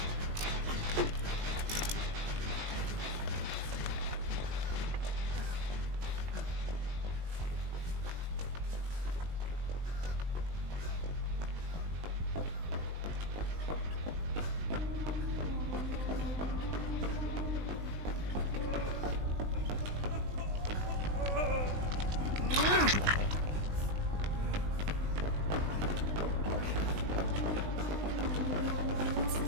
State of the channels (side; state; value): left; late; 20 ms